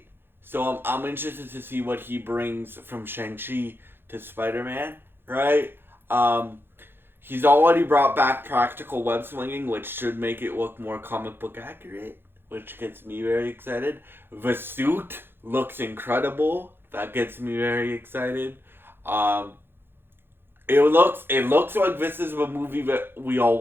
So I'm interested to see what he brings from Shang-Chi to Spider-Man, right? He's already brought back practical web slinging, which should make it look more comic book accurate, which gets me very excited. The suit looks incredible. That gets me very excited. It looks like this is the movie that we all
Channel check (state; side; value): late; left; 0.10 ms